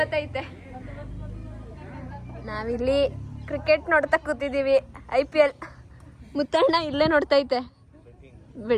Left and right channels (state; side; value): identical; both; correlation 1.00